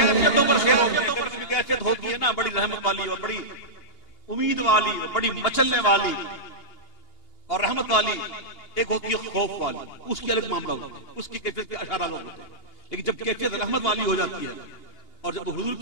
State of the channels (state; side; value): late; right; 2.8 ms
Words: کیفیت ہوتی ہے نا بڑی رحمت والی اور بڑی امید والی اور بڑی مچلنے والی اور رحمت والی. ایک ہوتی ہے خوف والی, اس کی الگ معاملہ ہوتا ہے, اس کی کیفیت کے اشارہ لوگ ہوتے ہیں. لیکن جب کیفیت رحمت والی ہو جاتی ہے اور جب حضور